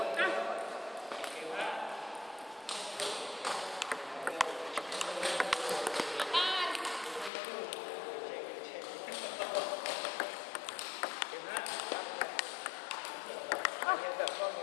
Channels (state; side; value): drops out; right; at 7.3 s